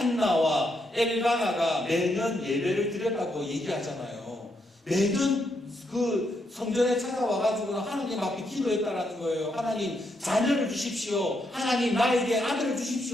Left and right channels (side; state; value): both; normal; correlation 0.79